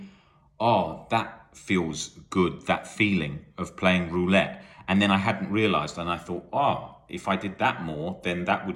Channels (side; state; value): both; identical; correlation 1.00